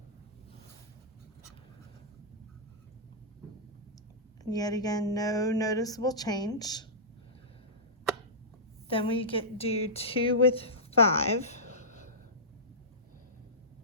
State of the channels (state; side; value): normal; both; correlation -0.16